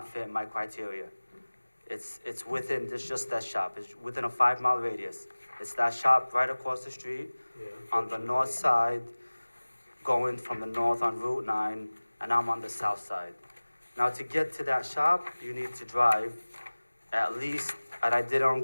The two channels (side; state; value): both; inverted; correlation -1.00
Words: fit my criteria. It's within, it's just that shop. It's within a 5-mile radius. It's that shop right across the street on the north side, going from the north on Route 9, and I'm on the south side. Now, to get to that shop, you need to drive at least, and I did it on